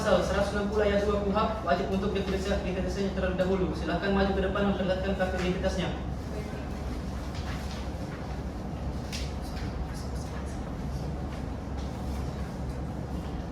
160 ayat 2 KUHP, wajib untuk identitasnya terlebih dahulu. Silakan maju ke depan memperlihatkan kartu identitasnya.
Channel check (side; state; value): both; identical; correlation 1.00